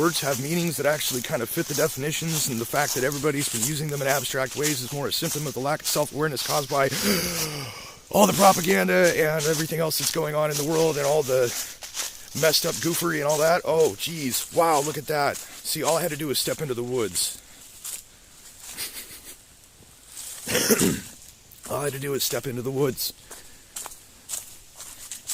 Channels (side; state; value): both; identical; correlation 1.00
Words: have meanings that actually kind of fit the definitions, and the fact that everybody's been using them in abstract ways is more a symptom of the lack of self-awareness caused by all the propaganda and everything else that's going on in the world and all the messed up goofery and all that? Oh, geez. Wow, look at that. See, all I had to do was step into the woods. All I had to do is step into the woods.